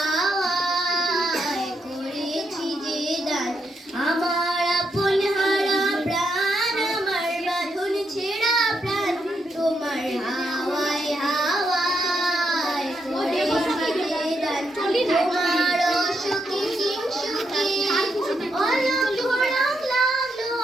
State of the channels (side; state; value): both; normal; correlation 0.80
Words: করেছি যে দান। আমার আপন হারা প্রাণ, আমার বাঁধন ছেঁড়া প্রাণ, তোমার হাওয়ায় হাওয়ায় করেছি যে দান। তোমার অসুখে কিংসুখে অলক্ষ রং লাগলো